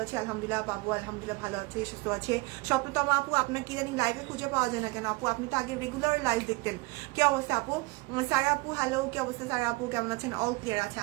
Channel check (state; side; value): quieter; left; 24.6 dB